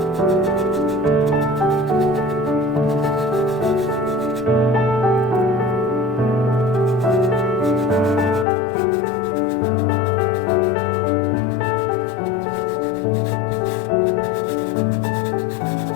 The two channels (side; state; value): right; drops out; at 8.5 s